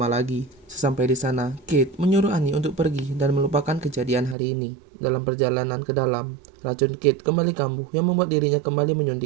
lagi. Sesampai di sana, Kate menyuruh Annie untuk pergi dan melupakan kejadian hari ini. Dalam perjalanan ke dalam, racun Kate kembali kambuh yang membuat dirinya kembali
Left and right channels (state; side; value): drops out; left; at 4.4 s